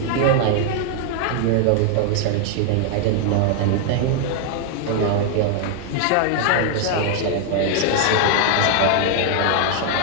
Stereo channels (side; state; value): both; different; correlation 0.00